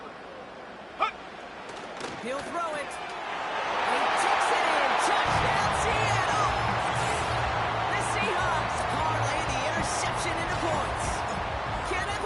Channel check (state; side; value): identical; both; correlation 1.00